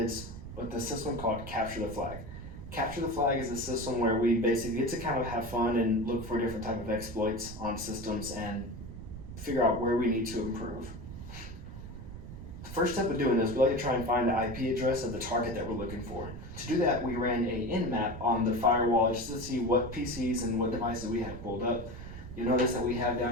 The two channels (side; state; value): right; noise; rumble, 11 dB below the sound